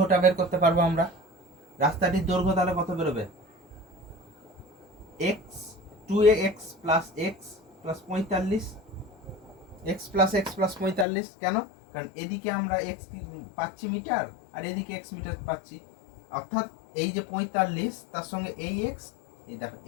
বের করতে পারবো আমরা। রাস্তাটির দৈর্ঘ্য তাহলে কত বেরোবে? x 2x plus x plus 45, x plus x plus 45। কেন? কারণ এদিকে আমরা x পাচ্ছি মিটার আর এদিকে x মিটার পাচ্ছি, অর্থাৎ এই যে 45 তার সঙ্গে এই x, এই দেখো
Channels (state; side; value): drops out; right; at 11.1 s